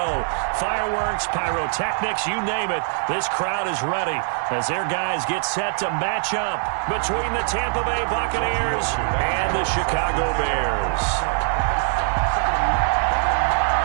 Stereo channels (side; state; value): left; silent; digital silence